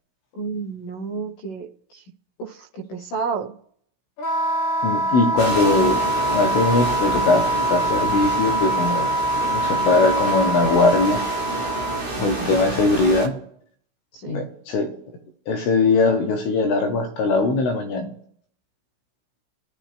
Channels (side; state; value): right; late; 16 ms